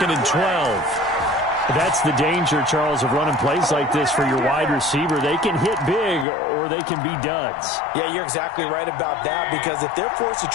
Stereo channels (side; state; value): right; drops out; at 6.2 s